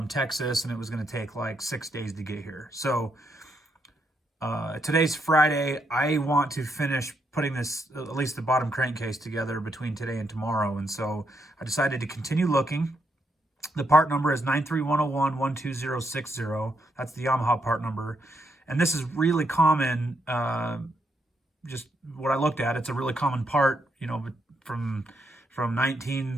Texas, and it was going to take like 6 days to get here. So today's Friday. I want to finish putting this, at least the bottom crankcase, together between today and tomorrow. And so I decided to continue looking. The part number is 931012060. That's the Yamaha part number. And this is really common, just what I looked at. It's a really common part, from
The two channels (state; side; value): normal; both; correlation 0.78